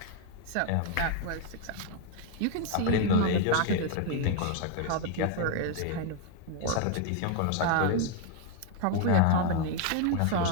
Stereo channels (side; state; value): both; different; correlation 0.00